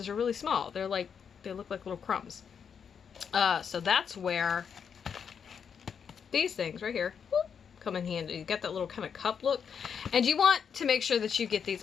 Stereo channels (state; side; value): quieter; right; 7.0 dB